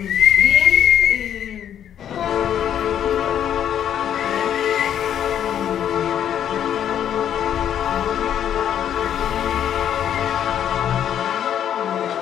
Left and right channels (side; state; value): right; quieter; 9.8 dB